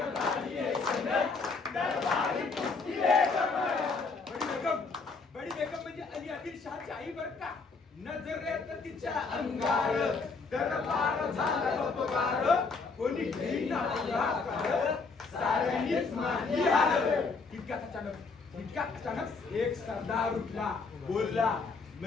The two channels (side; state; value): right; quieter; 4.4 dB